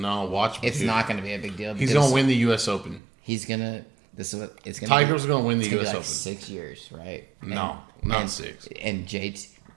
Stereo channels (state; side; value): drops out; left; at 3.0 s